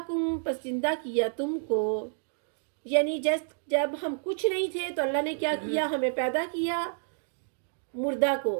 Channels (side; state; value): left; silent; digital silence